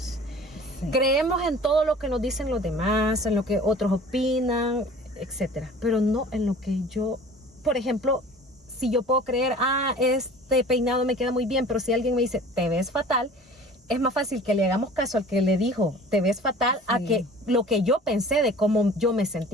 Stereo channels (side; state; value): both; normal; correlation 0.45